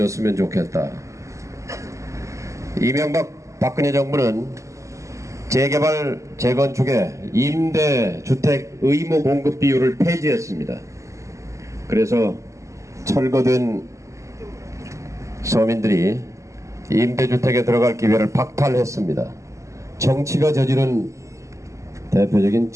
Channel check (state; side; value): late; left; 0.15 ms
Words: 좋겠다. 이명박 박근혜 정부는 재개발 재건축의 임대주택 의무 공급 비율을 폐지했습니다. 그래서 철거된 서민들이 임대주택에 들어갈 기회를 박탈했습니다. 정치가 저지른 대표적인